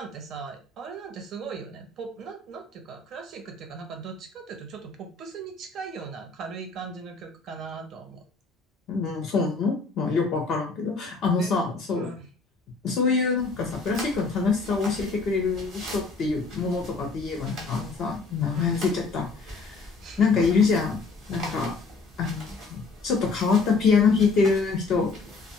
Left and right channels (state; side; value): quieter; right; 4.1 dB